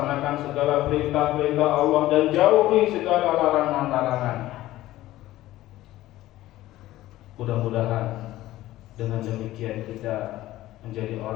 segala perintah-perintah Allah dan jauhi segala larangan-larangannya. Mudah-mudahan dengan demikian kita menjadi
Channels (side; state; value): right; quieter; 15.7 dB